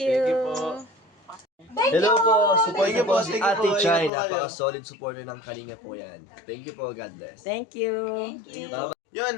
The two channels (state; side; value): drops out; right; at 4.1 s